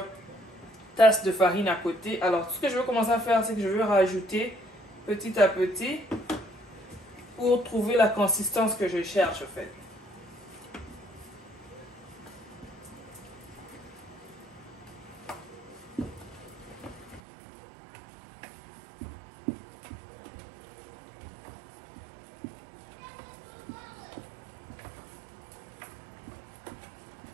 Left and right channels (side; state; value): left; drops out; at 17.2 s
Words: tasse de farine à côté. Alors, ce que je vais commencer à faire, c'est que je vais rajouter petit à petit pour trouver la consistance que je cherche en fait.